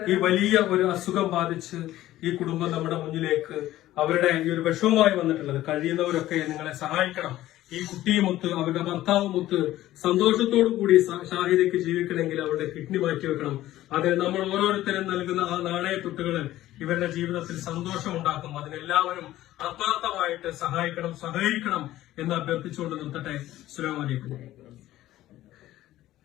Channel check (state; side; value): quieter; right; 14.8 dB